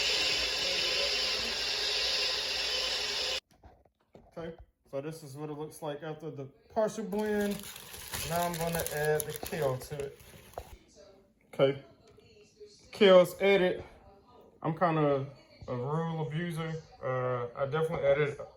Okay, so this is what it looks like after the partial blend. Now I'm gonna add the kale to it. Okay, kale's added. I'm kind of a rule abuser. I definitely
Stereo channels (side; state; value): both; identical; correlation 1.00